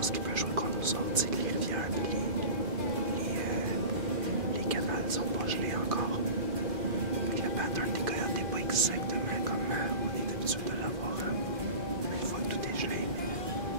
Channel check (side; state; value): left; late; 2.4 ms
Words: qui peut jouer contre nous autres, c'est que les rivières et les canals sont pas gelés encore. Le pattern des coyotes n'est pas exactement comme on est habitué de l'avoir une fois que tout est gelé, mais